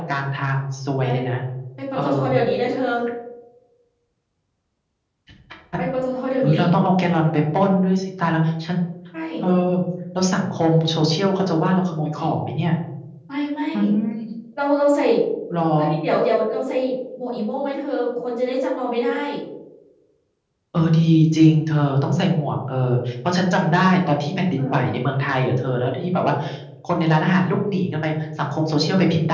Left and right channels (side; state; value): both; identical; correlation 1.00